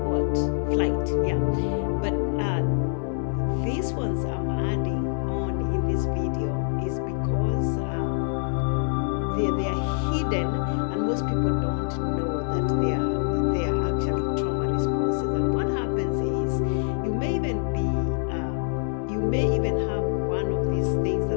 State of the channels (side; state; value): right; silent; digital silence